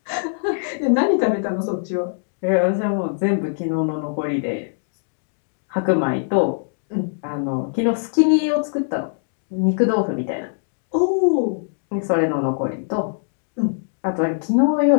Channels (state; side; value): silent; right; digital silence